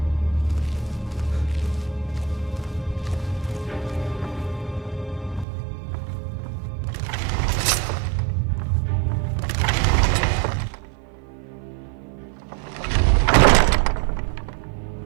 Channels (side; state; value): left; drops out; at 5.5 s